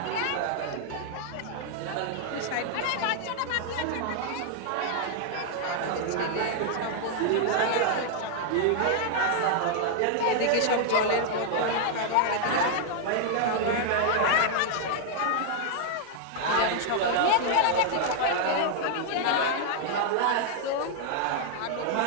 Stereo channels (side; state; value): both; different; correlation 0.00